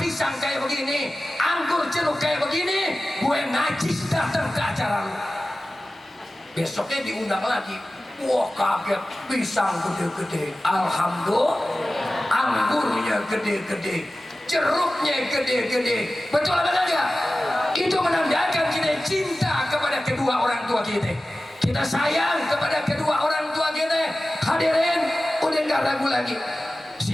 kayak begini, anggur jeruk kayak begini, gue najis datang ke acara lu. Besoknya diundang lagi. Wah kaget, pisang gede-gede, alhamdulillah. Anggurnya gede-gede, jeruknya gede-gede. Betul apa enggak? Itu menandakan kita cinta kepada kedua orang tua kita. Kita sayang kepada kedua orang tua kita. Hadirin, udah nggak ragu lagi.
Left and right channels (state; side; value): normal; both; correlation 0.96